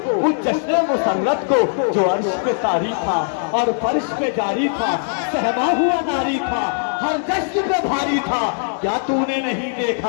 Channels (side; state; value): right; silent; 64 dB below the other